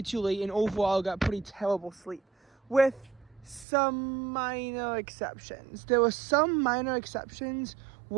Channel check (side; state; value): left; drops out; at 3.7 s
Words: too late, and overall got pretty terrible sleep, with some minor exceptions. There were some minor exceptions